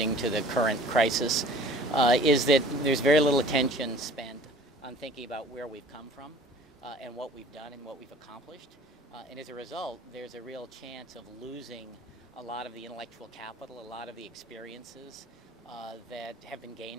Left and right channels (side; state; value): both; normal; correlation 0.49